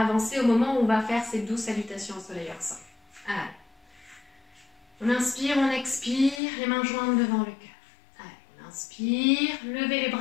avancer au moment où on va faire ces 12 salutations au soleil ensemble. Allez. On inspire, on expire, les mains jointes devant le cœur. Allez, on inspire, levez les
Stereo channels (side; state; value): right; drops out; at 6.4 s